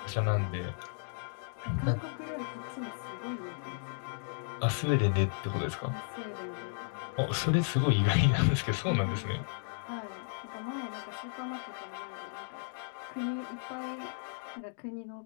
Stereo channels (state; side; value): silent; right; digital silence